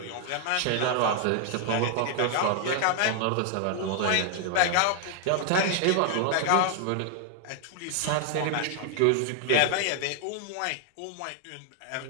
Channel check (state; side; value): different; both; correlation 0.00